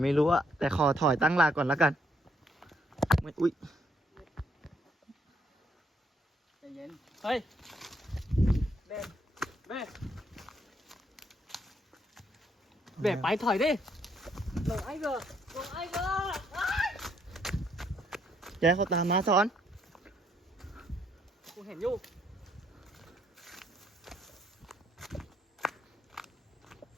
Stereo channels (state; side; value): normal; both; correlation 0.71